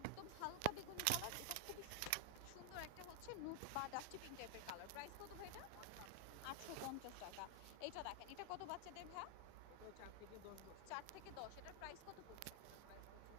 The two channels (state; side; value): different; both; correlation 0.00